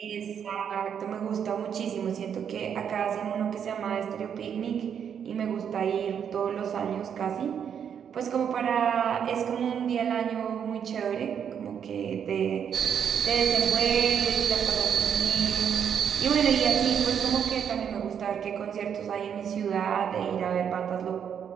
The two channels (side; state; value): left; quieter; 8.0 dB